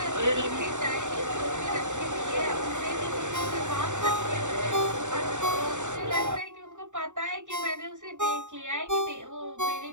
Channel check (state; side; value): late; left; 0.85 ms